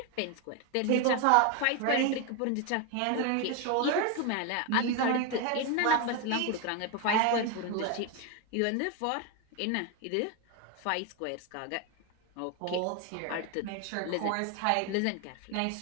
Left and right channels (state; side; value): different; both; correlation 0.01